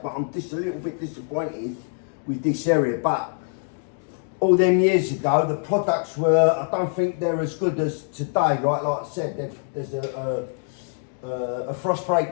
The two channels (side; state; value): right; silent; 62 dB below the other